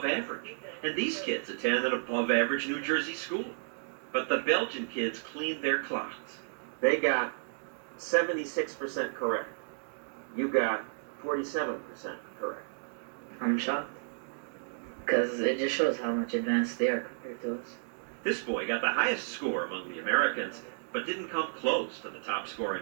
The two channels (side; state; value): left; silent; digital silence